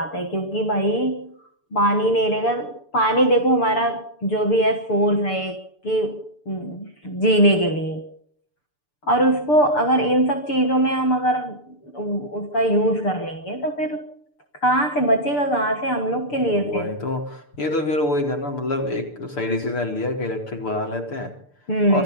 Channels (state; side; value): late; right; 6.8 ms